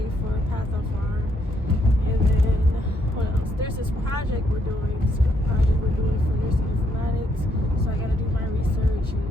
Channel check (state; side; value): normal; both; correlation 0.74